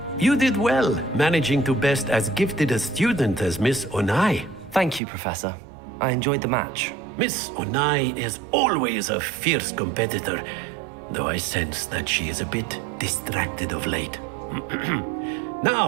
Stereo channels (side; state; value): left; drops out; at 5.0 s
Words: You did well, managing to best as gifted a student as Miss Onai. Thank you, Professor. I enjoyed the match. Miss Onai is always a fierce competitor, though I sense that she is a bit distracted of late.